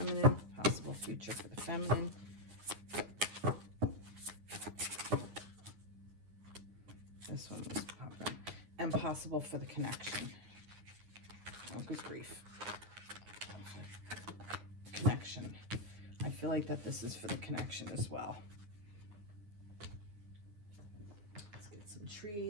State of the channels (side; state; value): left; late; 9.7 ms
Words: Possible future for the feminine. This one was popping. And possible for the connection. Oh, good grief. Connection. I feel like that this is for the connection as well. Let's get some